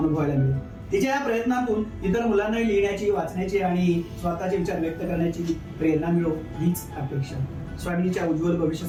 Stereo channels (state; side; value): identical; both; correlation 1.00